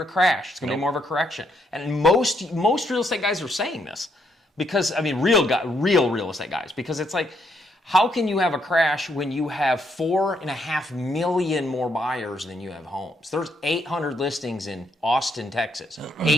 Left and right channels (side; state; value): both; normal; correlation 0.75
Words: a crash. It's going to be more of a correction. And most real estate guys are saying this because, I mean, real real estate guys, because it's like, how can you have a crash when you have 4.5 million more buyers than you have homes? There's 800 listings in Austin, Texas.